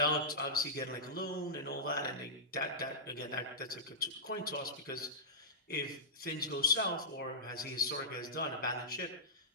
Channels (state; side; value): normal; both; correlation -0.14